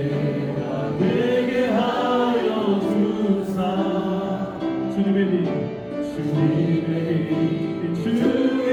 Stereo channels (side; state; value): both; identical; correlation 1.00